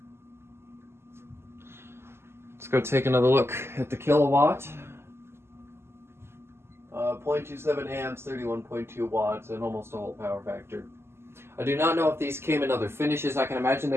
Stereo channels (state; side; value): late; left; 0.12 ms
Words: Let's go take another look at the kilowatt. 0.27 amps, 31.2 watts, and almost a whole power factor. I do not know if these came in other finishes. I can imagine